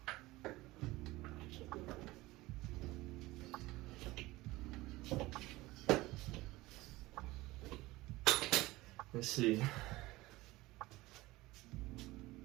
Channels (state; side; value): quieter; left; 19.5 dB